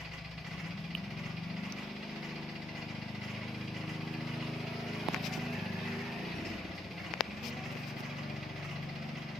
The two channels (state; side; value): normal; both; correlation 0.79